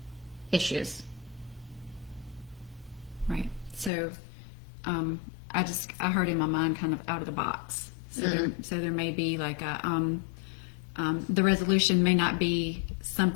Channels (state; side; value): drops out; right; at 3.9 s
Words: issues. Right. So, I heard in my mind kind of out of the box. So there may be like the resolution may not be